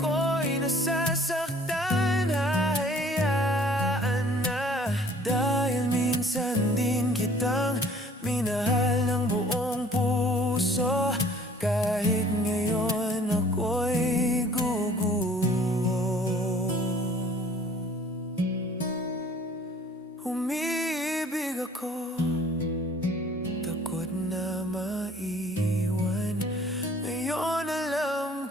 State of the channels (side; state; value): both; normal; correlation 0.54